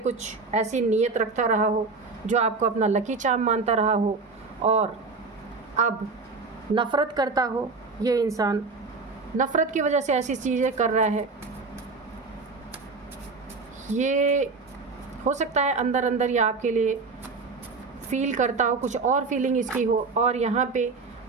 ऐसी नीयत रखता रहा हो जो आपको अपना लकी चार्म मानता रहा हो, और अब नफ़रत करता हो। ये इंसान नफ़रत की वजह से ऐसी चीज़ें कर रहा है। ये हो सकता है अंदर अंदर ये आपके लिए फील करता हो, कुछ और फीलिंग इसकी हो, और यहाँ पे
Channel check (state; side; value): quieter; left; 4.2 dB